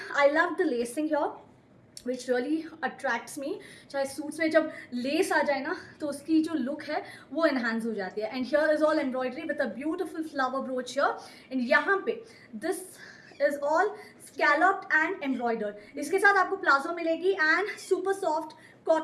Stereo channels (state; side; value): identical; both; correlation 1.00